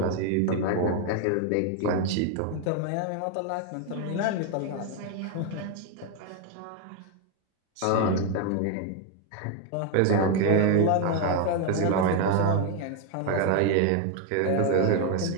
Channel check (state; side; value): different; both; correlation 0.01